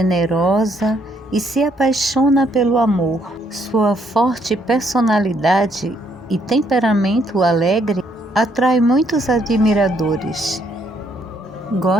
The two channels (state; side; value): normal; both; correlation 0.70